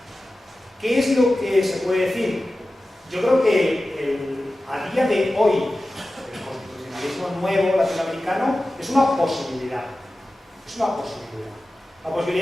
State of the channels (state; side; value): normal; both; correlation 0.95